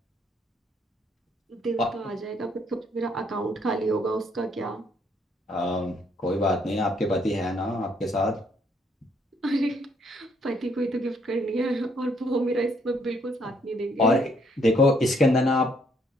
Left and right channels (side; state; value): both; normal; correlation 0.69